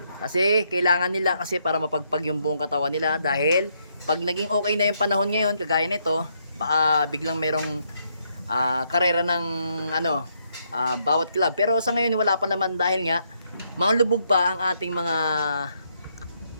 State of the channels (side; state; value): both; inverted; correlation -0.75